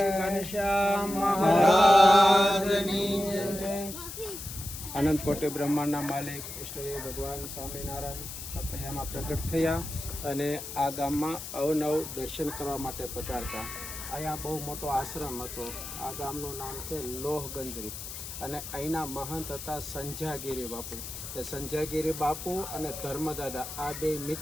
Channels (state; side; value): noise; left; hiss, 9 dB below the sound